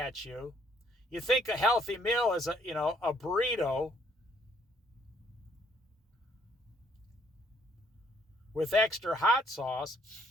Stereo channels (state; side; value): normal; both; correlation 0.67